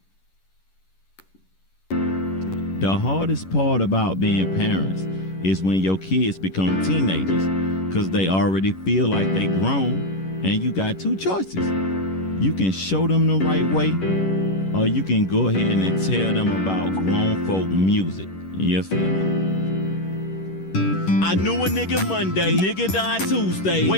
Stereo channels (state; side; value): late; right; 11 ms